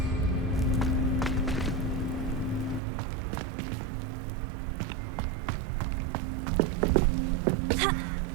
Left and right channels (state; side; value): drops out; left; at 2.8 s